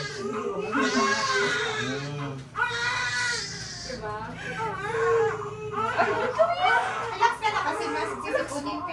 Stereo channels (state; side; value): identical; both; correlation 1.00